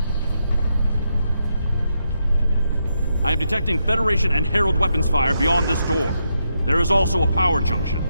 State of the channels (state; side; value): inverted; both; correlation -0.82